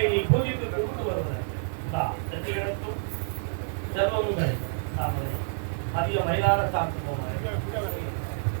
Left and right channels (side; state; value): left; silent; 59 dB below the other